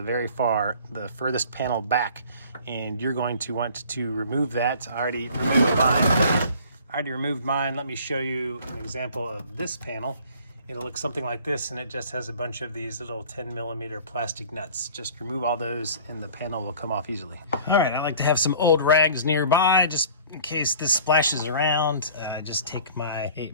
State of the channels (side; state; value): both; inverted; correlation -0.48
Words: furthest panel back, and you're going to want to remove that. I already removed mine. Let me show you an example of this panel. It'll look something like this, and it just has a bunch of these little 10 millimeter plastic nuts. Just remove all those and the panel will come off easily. All right, I like to have some old rags nearby just in case this splashes around. Just take my